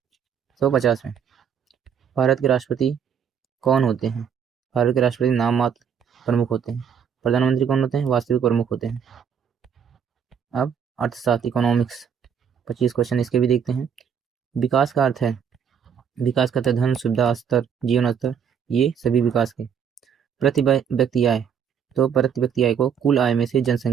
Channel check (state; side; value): quieter; left; 7.7 dB